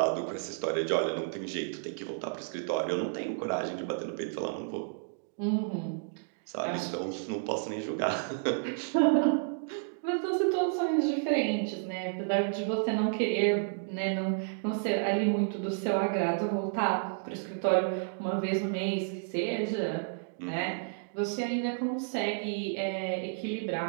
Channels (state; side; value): silent; left; digital silence